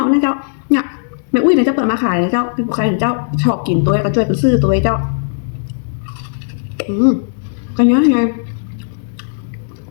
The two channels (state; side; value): silent; right; digital silence